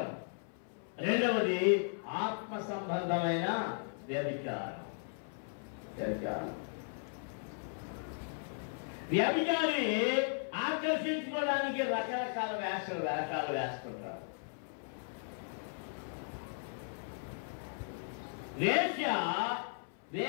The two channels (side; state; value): right; silent; 53 dB below the other